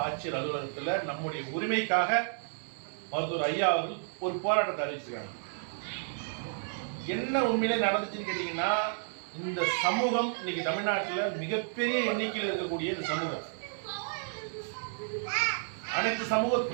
ஆட்சியர் அலுவலகத்தில் நம்முடைய உரிமைக்காக மருத்துவர் ஐயா அவர்கள் ஒரு போராட்டத்தை அறிவிச்சிருக்காங்க. என்ன உண்மையிலே நடந்துச்சுன்னு கேட்டீங்கன்னா, இந்த சமூகம் இன்னைக்கு தமிழ்நாட்டில் மிகப்பெரிய எண்ணிக்கையில் இருக்கக்கூடிய இந்த சமூகம் அனைத்து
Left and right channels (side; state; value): left; silent; 57 dB below the other